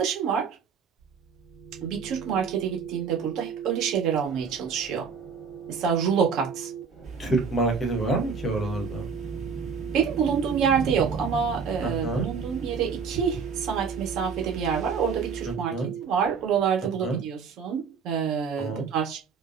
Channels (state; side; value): quieter; left; 5.9 dB